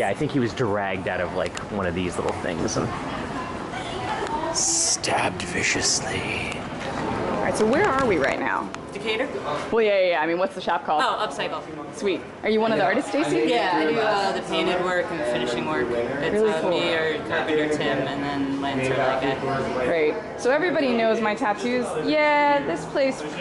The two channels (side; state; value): both; identical; correlation 1.00